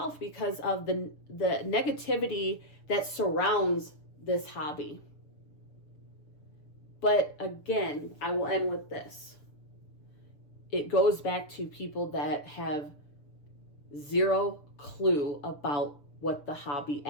because of the negativity that surrounds this hobby. But again, I will end with this. It goes back to people that have zero clue about what the hobby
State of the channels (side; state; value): right; late; 6.7 ms